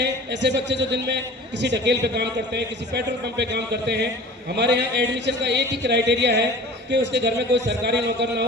ऐसे बच्चे जो दिन में किसी ढकेल पे काम करते हैं, किसी पेट्रोल पंप पे काम करते हैं। हमारे यहाँ एडमिशन का एक ही क्राइटेरिया है कि उसके घर में कोई सरकारी नौकर ना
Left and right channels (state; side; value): normal; both; correlation 0.42